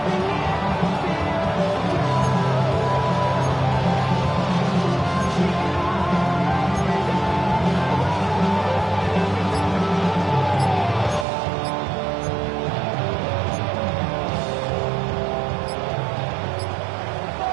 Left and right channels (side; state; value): left; drops out; at 11.2 s